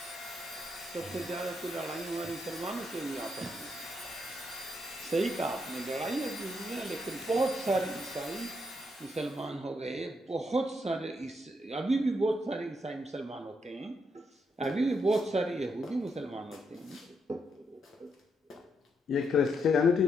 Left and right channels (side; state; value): both; normal; correlation 0.79